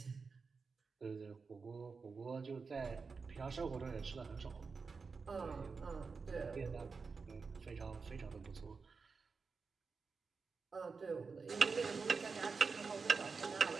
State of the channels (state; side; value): quieter; left; 4.8 dB